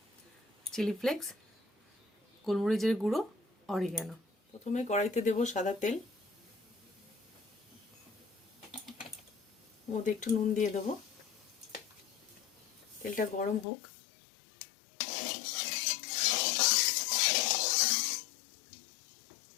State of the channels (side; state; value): right; drops out; at 13.7 s